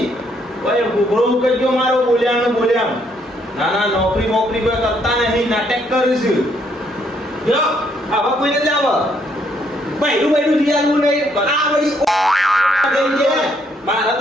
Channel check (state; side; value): normal; both; correlation 0.70